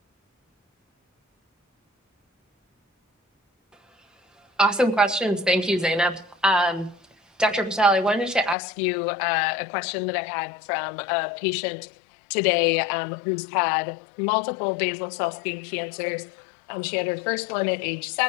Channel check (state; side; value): drops out; right; at 8.6 s